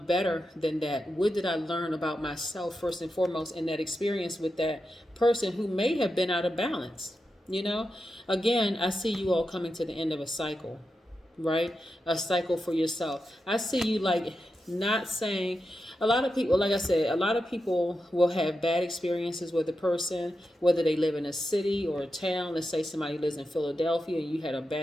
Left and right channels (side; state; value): both; normal; correlation 0.89